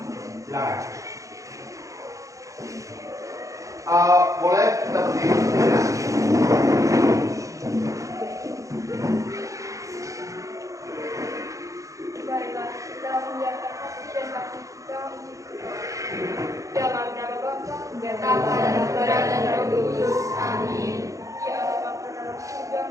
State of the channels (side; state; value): left; late; 0.16 ms